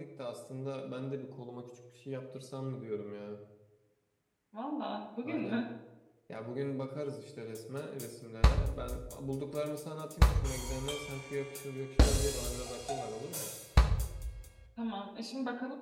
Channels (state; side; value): identical; both; correlation 1.00